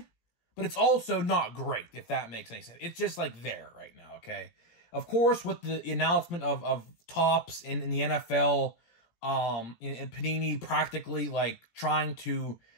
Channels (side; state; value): right; late; 17 ms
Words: but it's also not great, if that makes any sense. It's just, like, there right now, okay? Of course, with the announcement of Topps in the NFL, and Panini practically, like, trying to